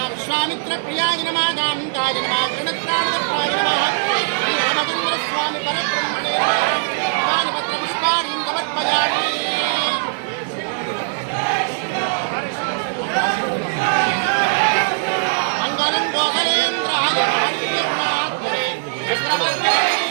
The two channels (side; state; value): left; silent; 56 dB below the other